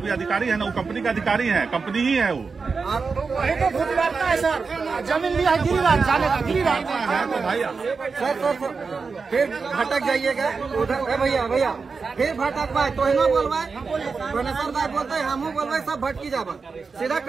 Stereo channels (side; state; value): left; quieter; 4.8 dB